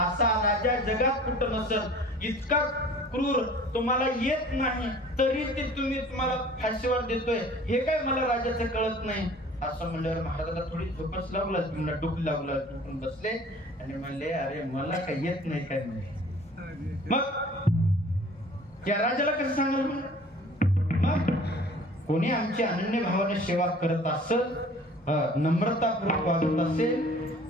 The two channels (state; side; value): normal; both; correlation 0.48